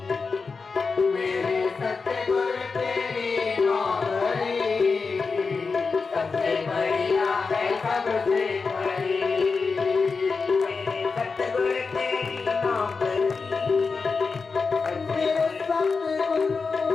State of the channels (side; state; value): right; quieter; 4.7 dB